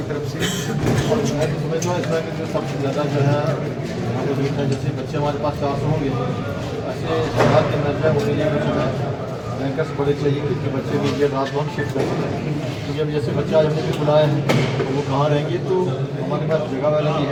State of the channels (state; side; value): identical; both; correlation 1.00